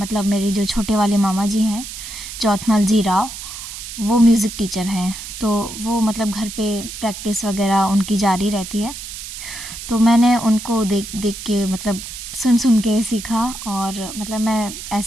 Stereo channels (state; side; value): noise; right; hiss, 10 dB below the sound